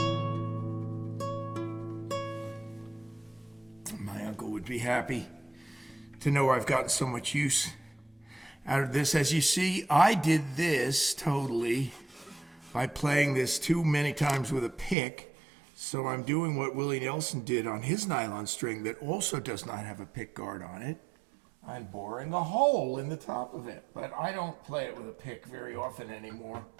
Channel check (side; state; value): left; drops out; at 15.0 s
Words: Would be happy to know I've gotten so much use out of this. As you see, I did this totally by playing this too many times with a pick. So I'm doing what Willie Nelson did on his nylon string that also does not have a pick guard on it. I'm boring a hole in the top of it, but I don't play it with a pick very often anymore.